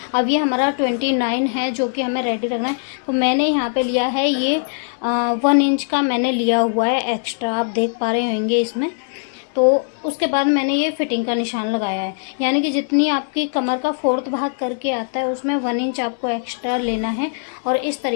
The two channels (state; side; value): silent; right; digital silence